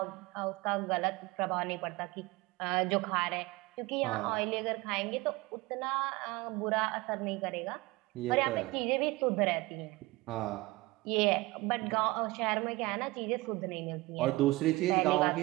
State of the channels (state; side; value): quieter; left; 21.5 dB